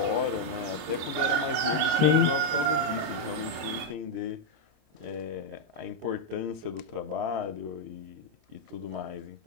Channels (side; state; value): left; late; 26 ms